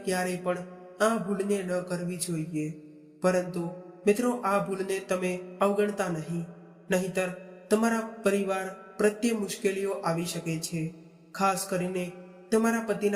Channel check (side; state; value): both; identical; correlation 1.00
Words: ક્યારેય પણ આ ભૂલને ન કરવી જોઈએ। પરંતુ મિત્રો, આ ભૂલને તમે અવગણતા નહીં, નહીંતર તમારા પરિવાર પ્રત્યે મુશ્કેલીઓ આવી શકે છે। ખાસ કરીને તમારા